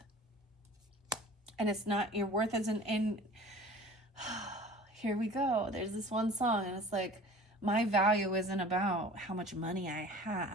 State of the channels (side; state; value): both; normal; correlation 0.43